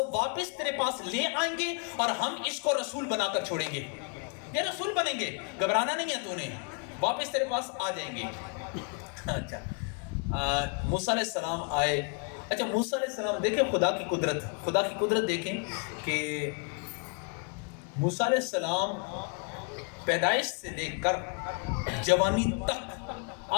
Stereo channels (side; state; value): right; quieter; 37.3 dB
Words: واپس تیرے پاس لے آئیں گے اور ہم اس کو رسول بنا کر چھوڑیں گے، یہ رسول بنیں گے، گھبرانا نہیں ہے تو نے، واپس تیرے پاس آ جائیں گے۔ اچھا موسیٰ علیہ السلام آئے۔ اچھا موسیٰ علیہ السلام دیکھیں خدا کی قدرت دیکھیں کہ موسیٰ علیہ السلام پیدائش سے لے کر جوانی تک